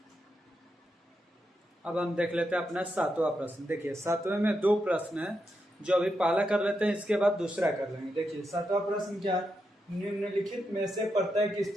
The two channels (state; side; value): normal; both; correlation 0.85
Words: अब हम देख लेते हैं अपना 7वां प्रश्न। देखिए 7वें में 2 प्रश्न है, जो अभी पहला कर लेते हैं, इसके बाद दूसरा कर लेंगे। देखिए 7वां प्रश्न क्या है, निम्नलिखित में से प्रत्येक